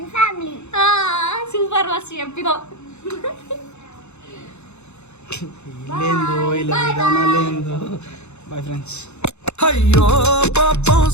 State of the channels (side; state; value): right; late; 0.82 ms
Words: family. Super మస్తు చెప్పినావు. లేదో ఇలా విధానం లేదో. Bye friends. అయ్యో పాపం